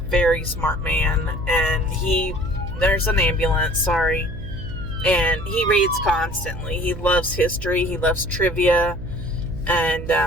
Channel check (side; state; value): right; noise; hum, 10 dB below the sound